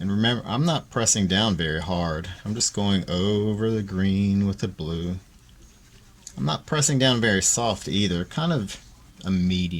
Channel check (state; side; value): identical; both; correlation 1.00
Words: And remember, I'm not pressing down very hard. I'm just going over the green with the blue. I'm not pressing down very soft either, kind of a